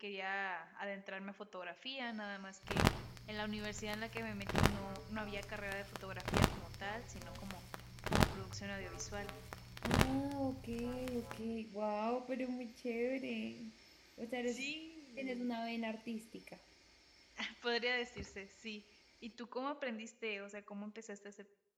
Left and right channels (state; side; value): identical; both; correlation 1.00